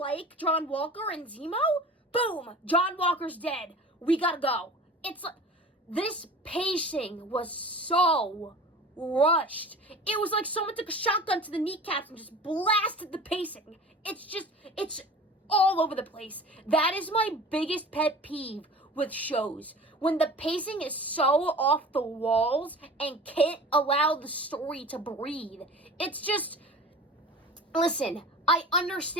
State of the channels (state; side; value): normal; both; correlation 0.39